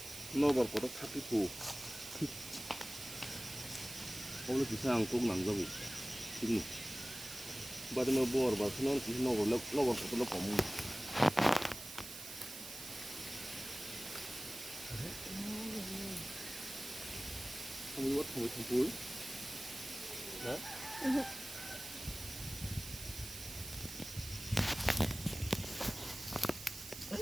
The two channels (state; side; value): noise; right; hiss, 10 dB below the sound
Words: nobar kotak tapiku 오늘 기상 꼭 남자고 지금 바디마 부바 bar 그는 기상 노bar kotak 거무 không có thổi thằng cuối đó